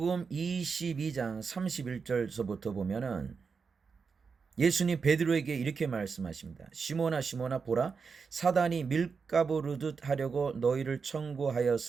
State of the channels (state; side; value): quieter; left; 5.4 dB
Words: 22장 31절서부터 보면은 예수님 베드로에게 이렇게 말씀하십니다. 시몬아 시몬아 보라 사단이 밀가부르듯 하려고 너희를